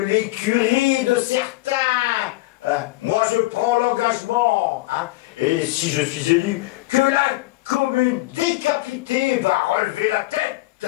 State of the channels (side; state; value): right; quieter; 20.1 dB